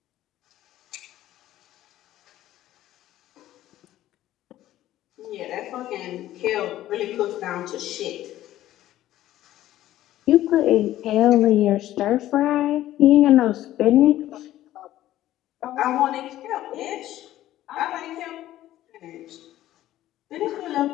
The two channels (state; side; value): quieter; right; 13.9 dB